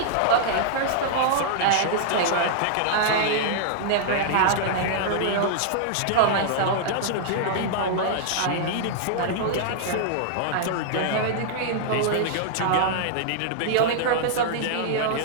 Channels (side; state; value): both; different; correlation -0.01